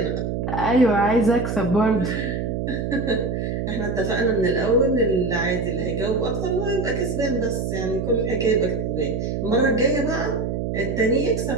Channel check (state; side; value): noise; right; hum, 2 dB below the sound